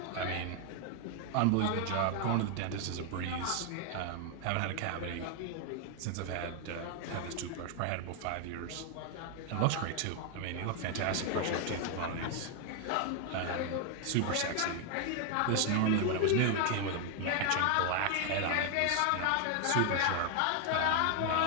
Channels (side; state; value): both; different; correlation 0.00